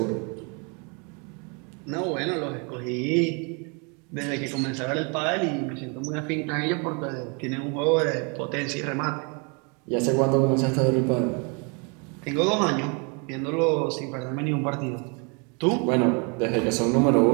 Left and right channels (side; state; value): left; quieter; 34.1 dB